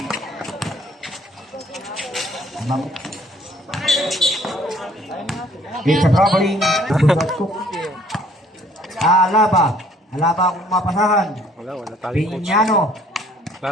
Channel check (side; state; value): both; normal; correlation 0.59